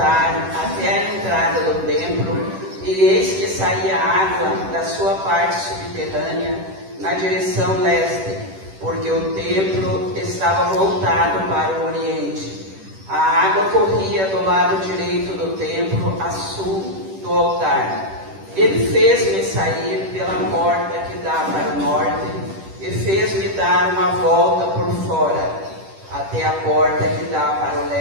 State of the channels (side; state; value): left; late; 10 ms